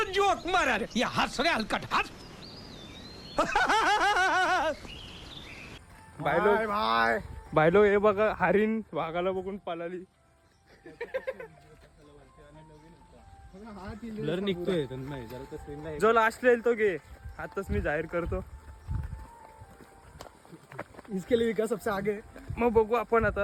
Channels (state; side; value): identical; both; correlation 1.00